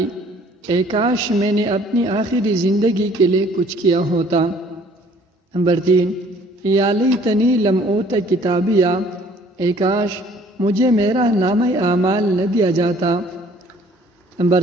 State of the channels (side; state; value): both; normal; correlation 0.56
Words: اے کاش میں نے اپنی آخری زندگی کے لیے کچھ کیا ہوتا۔ نمبر 3، یا لیتنی لم اوت کتابیہ، اے کاش مجھے میرا نامہ اعمال نہ دیا جاتا۔ نمبر